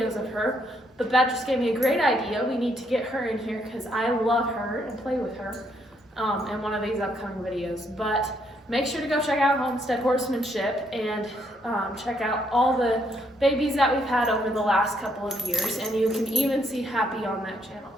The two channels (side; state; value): both; normal; correlation 0.72